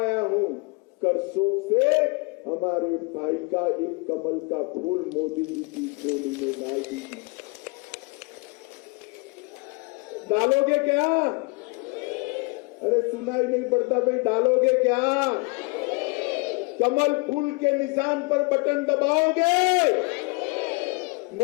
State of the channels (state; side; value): quieter; right; 28.9 dB